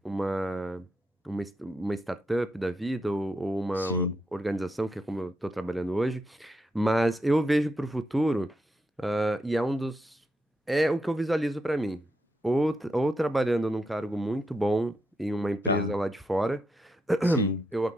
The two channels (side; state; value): both; normal; correlation 0.83